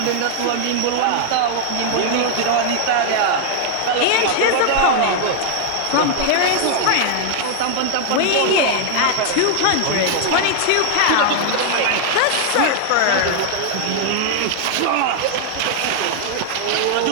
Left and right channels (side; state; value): both; different; correlation 0.00